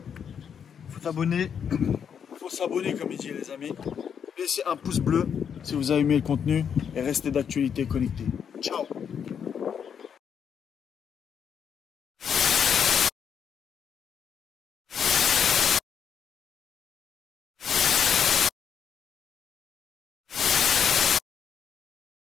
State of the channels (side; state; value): right; quieter; 7.6 dB